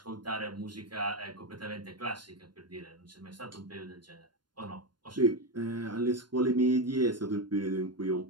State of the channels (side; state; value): left; late; 0.71 ms